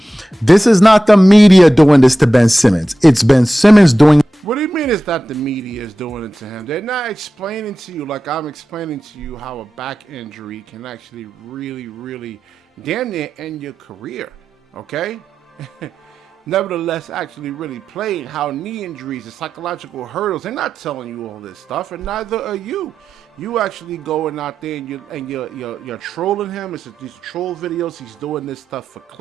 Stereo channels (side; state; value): both; normal; correlation 0.93